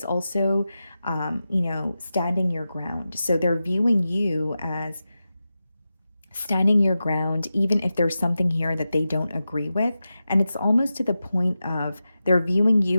also, standing your ground. So they're viewing you as standing your ground, even if there's something here that they don't agree with. And it's almost to the point of they're viewing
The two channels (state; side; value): inverted; both; correlation -0.92